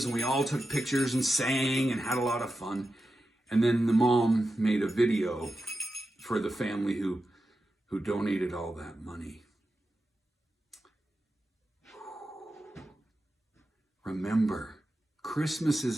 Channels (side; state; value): both; normal; correlation 0.91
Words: and we all took pictures and sang and had a lot of fun. And then the mom made a video for the family who donated all that money. Remember, Christmas is